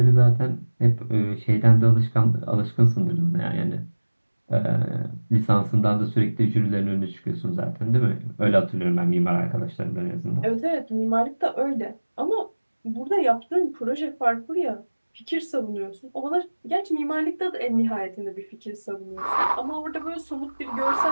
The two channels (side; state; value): both; inverted; correlation -1.00